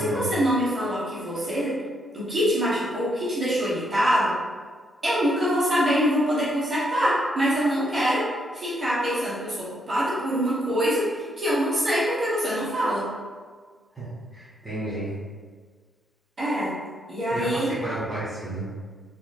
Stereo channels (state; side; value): normal; both; correlation 0.75